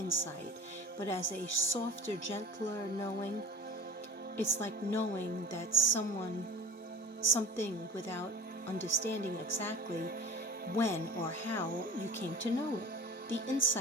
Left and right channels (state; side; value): normal; both; correlation 0.39